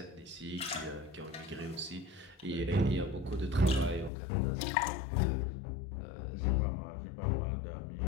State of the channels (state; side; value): drops out; right; at 4.1 s